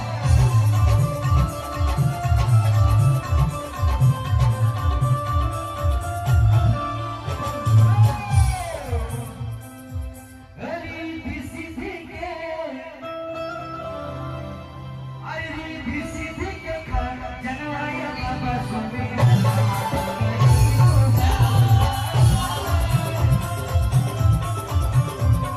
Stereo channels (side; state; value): both; identical; correlation 1.00